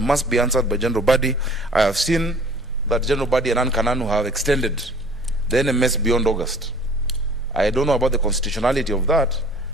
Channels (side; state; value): both; normal; correlation 0.50